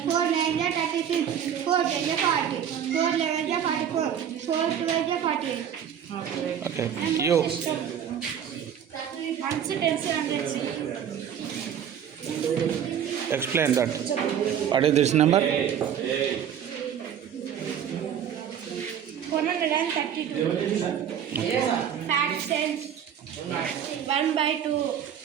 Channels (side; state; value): left; quieter; 8.9 dB